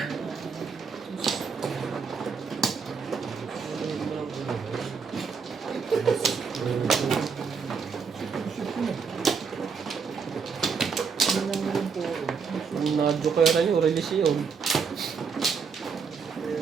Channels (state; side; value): quieter; left; 5.7 dB